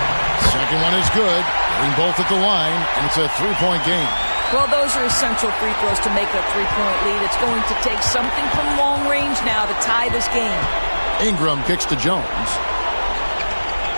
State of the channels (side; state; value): both; inverted; correlation -1.00